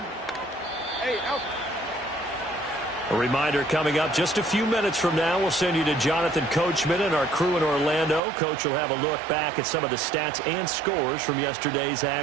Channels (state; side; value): drops out; left; at 8.2 s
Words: A reminder coming up just a few minutes from now, we'll send you to Jonathan Coachman and our crew in Orlando. Coach will have a look back at some of the stats and scores from yesterday's